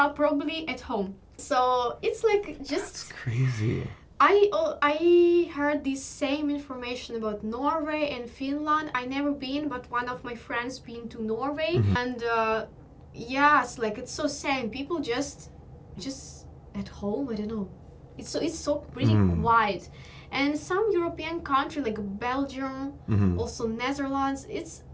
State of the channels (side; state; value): both; identical; correlation 1.00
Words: probably at home. So it's like just That's crazy. I heard this same information about Norway and Finland. I never been, but one of my friends been to Norway, and yes, like it's so same. People just at home. I don't know. It's so pretty quiet, and some European country like Belgium, also Netherlands. It's